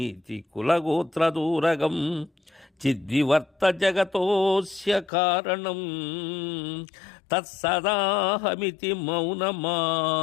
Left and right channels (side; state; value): right; drops out; at 5.1 s